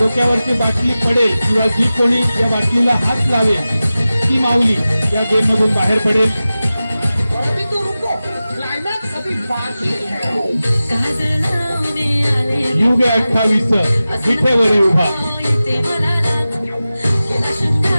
बाटली पडेल किंवा जी कोणी या बाटलीला हात लावेल ती माऊली या गेम मधून बाहेर पडेल. युग 28 विठेवर उभा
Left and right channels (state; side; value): inverted; both; correlation -0.95